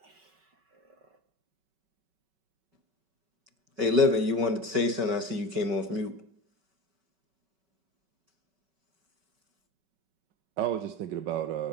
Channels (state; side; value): late; left; 5.3 ms